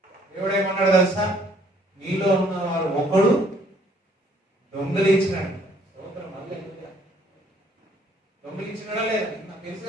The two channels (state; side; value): normal; both; correlation 0.62